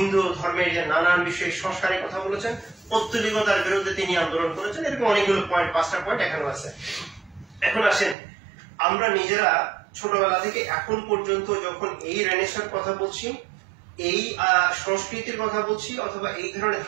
ধর্মের যে নানান বিষয়ে সংস্কারের কথা বলেছেন, পৌত্তলিকতার বিরুদ্ধে তিনি আন্দোলন করেছেন। এরকম অনেকগুলো পয়েন্ট, 5টা পয়েন্ট এখানেও আছে। এখন আসেন, আমরা নিজেরা ছোটবেলা থেকে এখন পর্যন্ত যখন এই রেনেসাঁর কথা বলছি, এই সংস্কৃতির কথা বলছি, অথবা এই ধরনের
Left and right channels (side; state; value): left; drops out; at 8.2 s